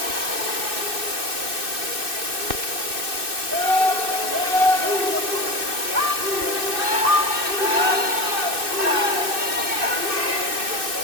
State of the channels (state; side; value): late; left; 2.6 ms